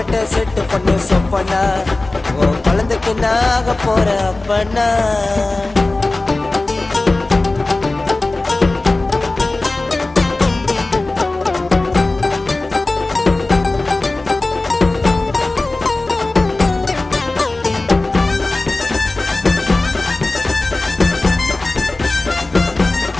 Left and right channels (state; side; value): quieter; right; 3.1 dB